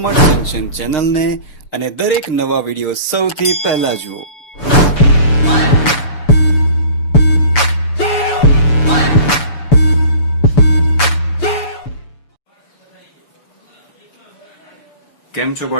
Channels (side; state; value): right; late; 6.9 ms